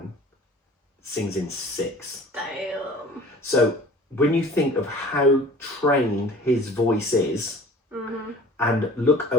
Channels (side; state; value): both; normal; correlation 0.45